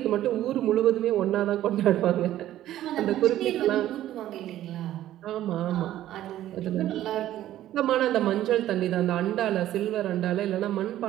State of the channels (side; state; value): left; quieter; 13.1 dB